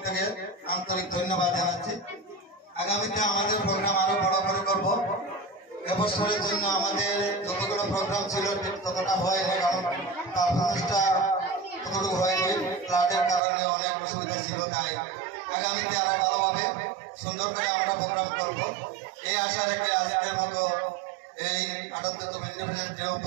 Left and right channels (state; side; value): drops out; left; at 13.4 s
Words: থেকে আন্তরিক ধন্যবাদ জানাচ্ছি। আগামীতে আমাদের প্রোগ্রাম আরো বড় করে করব। এবছরের জন্য আমাদের যতগুলো প্রোগ্রাম ছিল ঠিক ততটা হয়নি, কারণ পারফরমেন্সটা ততটুকু হয়নি, ফ্লাডের কারণে অনেক অসুবিধা ছিল। তাই আগামীতে আরো ভালোভাবে সুন্দর করে আমরা প্রোগ্রাম করব এই আশা রেখে আজকের মতো এই ৭৮তম ইন্ডিপেন্ডেন্স ডে